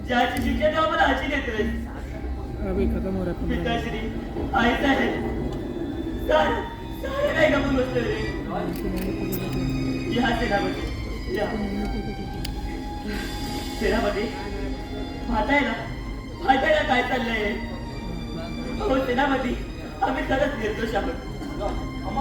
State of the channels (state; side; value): identical; both; correlation 1.00